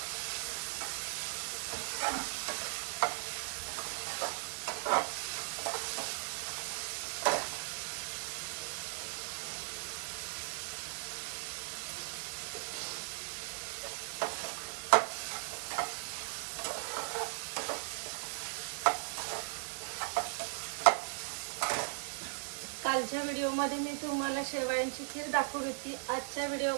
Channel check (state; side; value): silent; left; 53 dB below the other